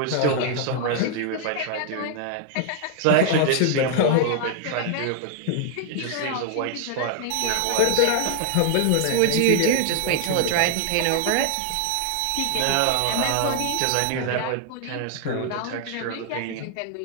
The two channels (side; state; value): both; different; correlation 0.00